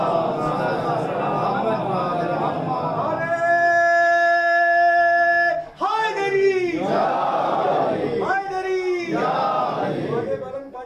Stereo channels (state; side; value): identical; both; correlation 1.00